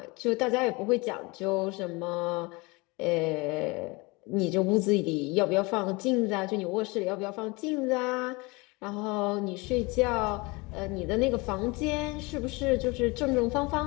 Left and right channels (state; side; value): quieter; right; 25.6 dB